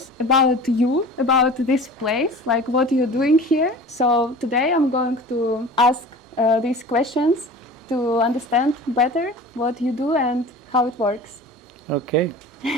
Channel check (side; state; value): both; normal; correlation 0.39